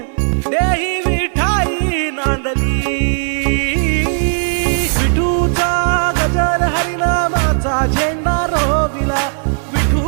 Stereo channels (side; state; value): left; silent; 61 dB below the other